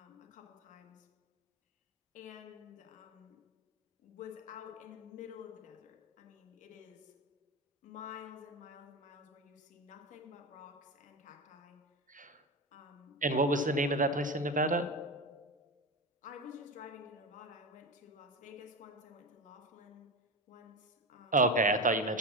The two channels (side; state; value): both; normal; correlation 0.22